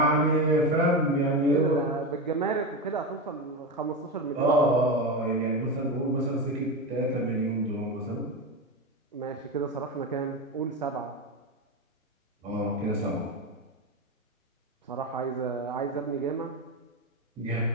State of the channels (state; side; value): normal; both; correlation 0.18